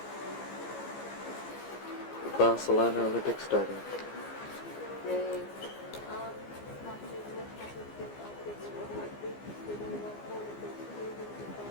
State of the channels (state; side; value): late; right; 15 ms